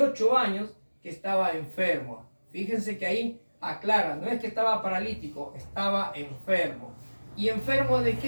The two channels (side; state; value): both; inverted; correlation -1.00